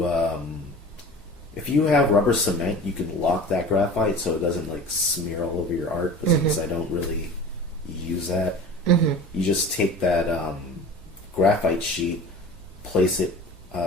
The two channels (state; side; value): normal; both; correlation 0.38